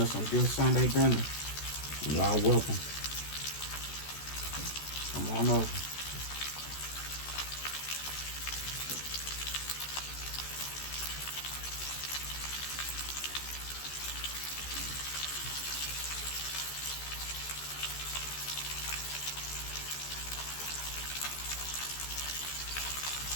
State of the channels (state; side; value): late; right; 14 ms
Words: some good Sunday dinner. Y'all welcome. Come on over.